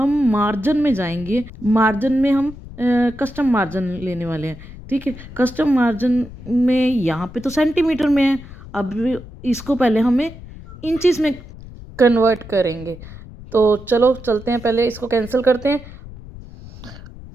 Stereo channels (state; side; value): noise; left; rumble, 16 dB below the sound